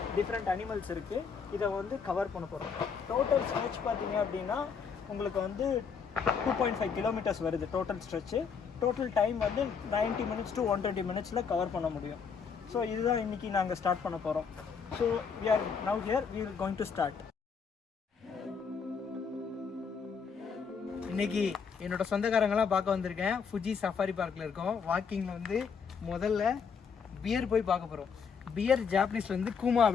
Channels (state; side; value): quieter; right; 6.1 dB